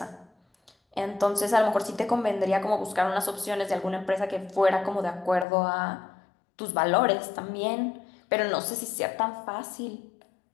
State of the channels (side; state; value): right; drops out; at 5.5 s